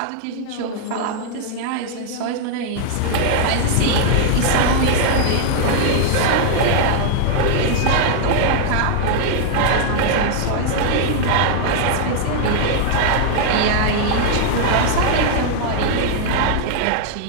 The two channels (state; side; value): different; both; correlation -0.01